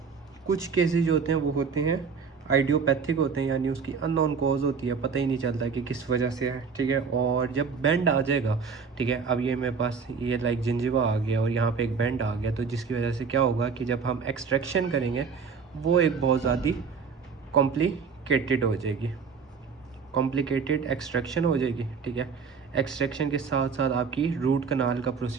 कुछ केसेस जो होते हैं वो होते हैं आइडियोपैथिक होते हैं, यानी उसकी अननोन कॉज होती है, पता ही नहीं चलता कि किस वजह से है। ठीक है, और जब बेंड आ जाएगा, ठीक है, अब ये मेरे पास ये लाइक जिंजिवा आ गया और यहाँ पे एक बेंड आ गया, तो जिसकी वजह से क्या होगा कि जब हम एक्सट्रैक्शन करेंगे वो एक बहुत ज़्यादा कॉम्प्लिकेटेड हो जाएगी, कॉम्प्लिकेटेड एक्सट्रैक्शन हो जाएगी। ठीक है, एक्सट्रैक्शन के साथ साथ आपकी रूट कनाल का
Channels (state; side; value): quieter; left; 5.7 dB